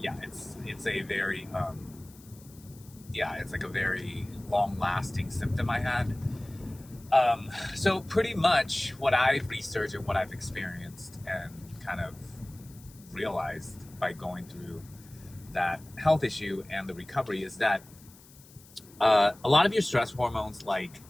it's a very it's like a very long-lasting symptom I had. So pretty much what I've researched and what I've experienced and kind of realized by going through that health issue and the recovery is that a lot of your stress hormones, like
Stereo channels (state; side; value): noise; left; hiss, 23 dB below the sound